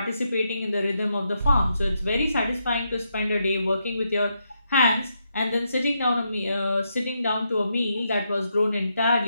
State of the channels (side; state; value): both; inverted; correlation -0.81